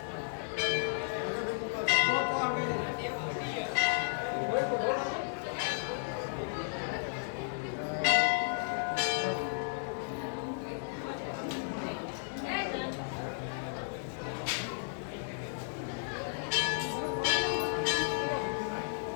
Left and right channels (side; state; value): right; silent; digital silence